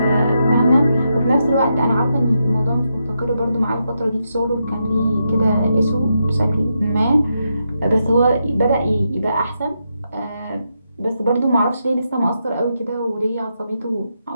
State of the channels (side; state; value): both; inverted; correlation -0.84